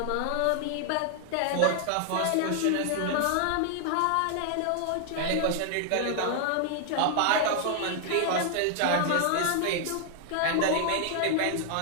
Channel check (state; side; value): different; both; correlation 0.00